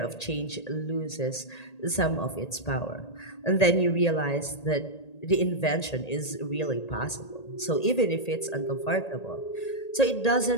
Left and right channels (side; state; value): right; late; 1.8 ms